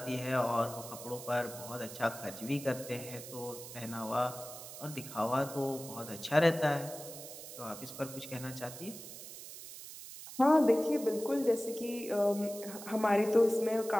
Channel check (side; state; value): right; noise; hiss, 12 dB below the sound